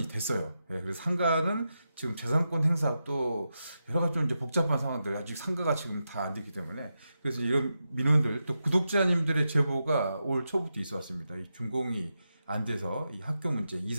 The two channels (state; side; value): inverted; both; correlation -0.88